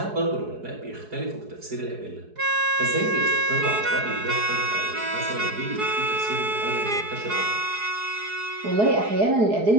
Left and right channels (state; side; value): late; left; 4.7 ms